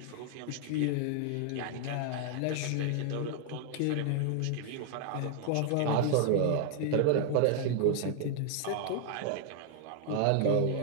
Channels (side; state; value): both; different; correlation 0.00